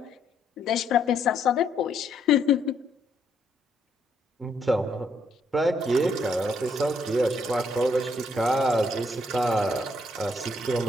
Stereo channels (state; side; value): normal; both; correlation 0.72